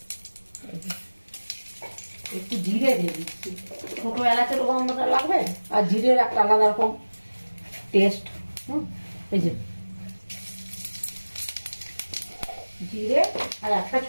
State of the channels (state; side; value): inverted; both; correlation -1.00